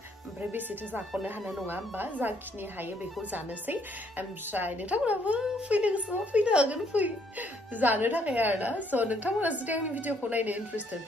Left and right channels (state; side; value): normal; both; correlation 0.67